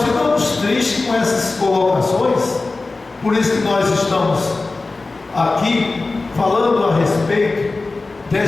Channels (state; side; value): quieter; right; 3.5 dB